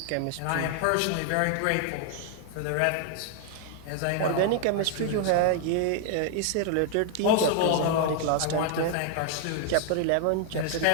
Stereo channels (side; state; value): both; different; correlation 0.00